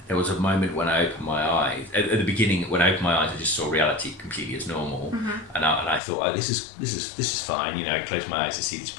there was a moment when I opened my eyes. At the beginning, when I opened my eyes, I just saw reality completely as normal, and I thought, oh, this is fine. You know, I closed my eyes to see these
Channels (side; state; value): right; drops out; at 6.0 s